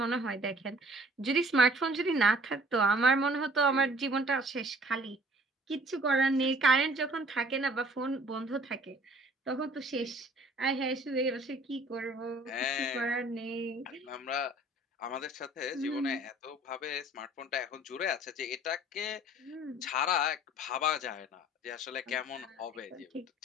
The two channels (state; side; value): normal; both; correlation 0.53